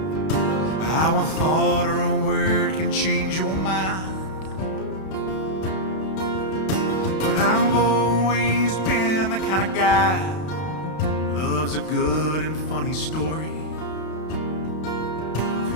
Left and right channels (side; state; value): right; late; 32 ms